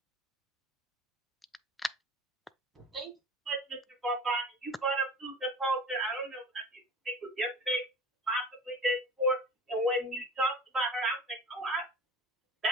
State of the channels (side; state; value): both; normal; correlation 0.38